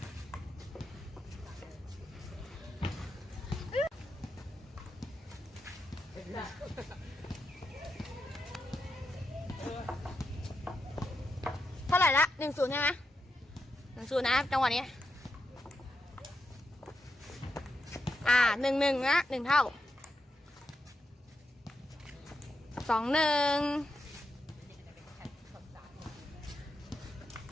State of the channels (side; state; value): both; normal; correlation 0.85